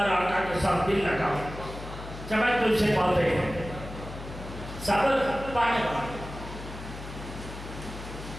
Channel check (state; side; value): noise; left; hum, 11 dB below the sound